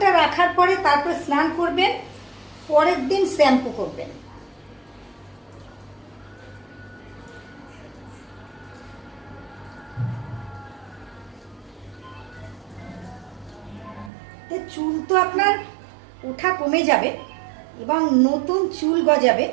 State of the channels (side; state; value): left; drops out; at 14.1 s